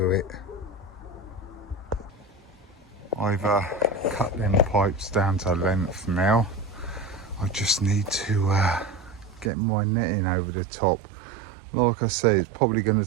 it. I've cut them pipes down to length now. I just need to get my netting over the top. Like I say, it's probably going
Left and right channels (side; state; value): left; drops out; at 9.5 s